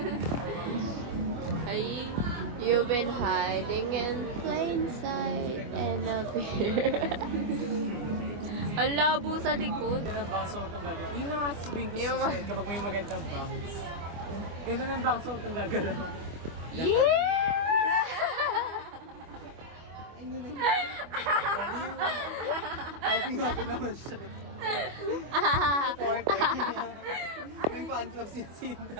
Ay, you've been hiding in plain sight and up here. Ang labo sa likod. Ganun ang baso itong gagalaw. Yun ang sasabihin ko Yung sa susunod kapag may magandang bangs. Ganun ang baso itong gagalaw. Yeah! Happy naman siya. May fan club si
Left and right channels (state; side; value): late; left; 25 ms